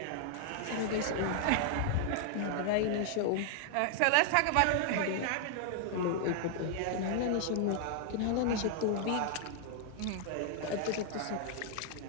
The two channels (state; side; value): different; both; correlation 0.00